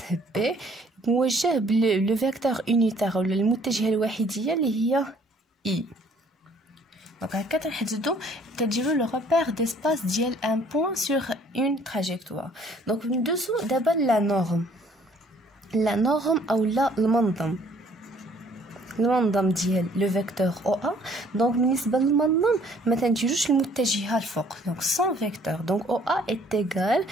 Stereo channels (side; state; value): both; normal; correlation 0.59